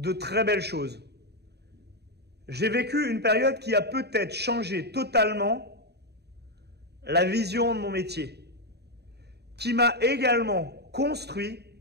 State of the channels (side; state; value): left; late; 0.48 ms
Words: très belles choses. J'ai vécu une période qui a peut-être changé totalement la vision de mon métier, qui m'a également construit